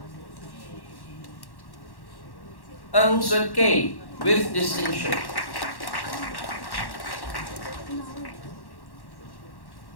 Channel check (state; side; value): late; right; 1.1 ms